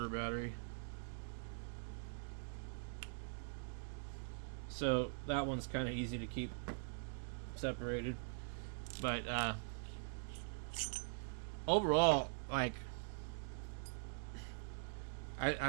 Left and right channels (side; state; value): left; silent; digital silence